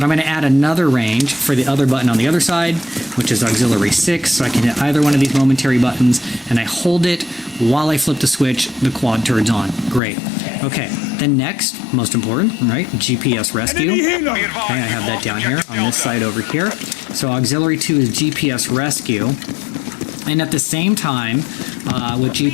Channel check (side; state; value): right; drops out; at 10.0 s